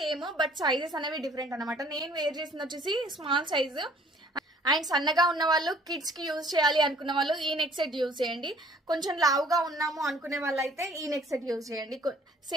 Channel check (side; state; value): both; normal; correlation 0.56